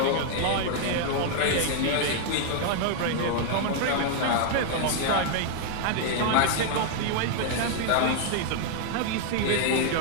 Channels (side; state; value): both; different; correlation 0.00